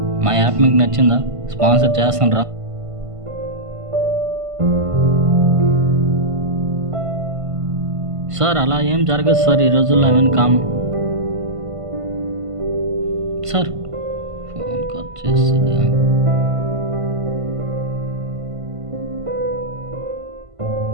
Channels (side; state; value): left; late; 1.5 ms